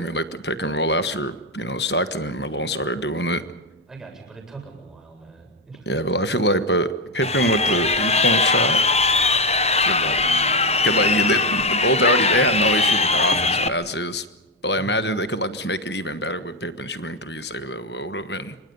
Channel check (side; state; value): both; normal; correlation 0.08